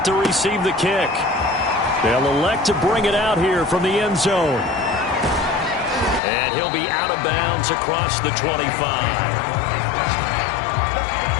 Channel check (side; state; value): right; drops out; at 6.2 s